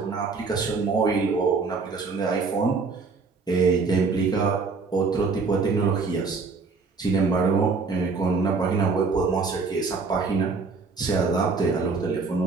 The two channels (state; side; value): quieter; left; 4.5 dB